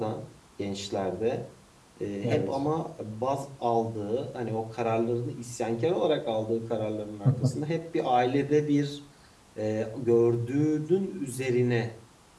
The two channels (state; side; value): identical; both; correlation 1.00